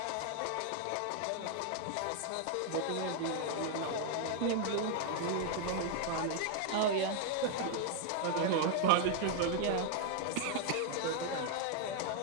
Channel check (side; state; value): both; different; correlation 0.00